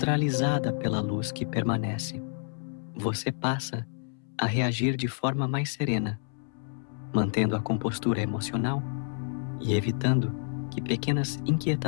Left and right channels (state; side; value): silent; right; 58 dB below the other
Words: pela luz que permanece. Você passa a reagir de forma mais serena, mantendo a compostura emocional e evitando que pequenas